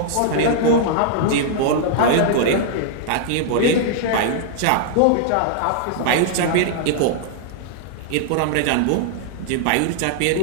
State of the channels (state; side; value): different; both; correlation -0.01